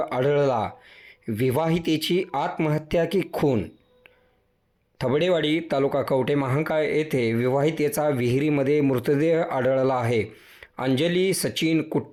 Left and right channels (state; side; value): identical; both; correlation 1.00